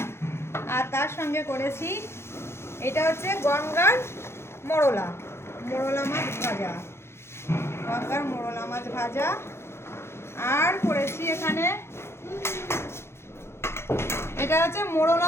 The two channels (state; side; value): late; right; 0.12 ms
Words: আর তার সঙ্গে করেছি এটা হচ্ছে গঙ্গার মোরলা মাছ ভাজা, গঙ্গার মোরলা মাছ ভাজা। আর করেছি এখানে এটা হচ্ছে মোরলা